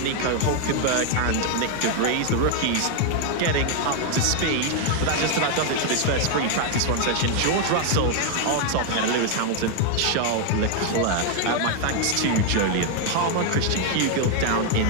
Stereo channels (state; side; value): different; both; correlation 0.01